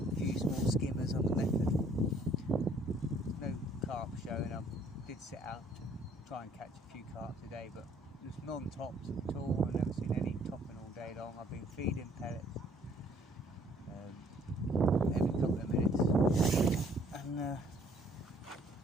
few small skimmers on the method. No carp showing. I did set out to try and catch a few carp today, but there's non-tops at all. I've never seen any topping all day long. I've been feeding pellets every couple of minutes, and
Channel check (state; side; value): normal; both; correlation 0.61